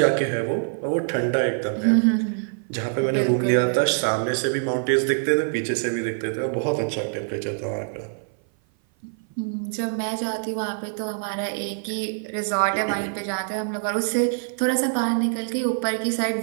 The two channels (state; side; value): silent; left; 56 dB below the other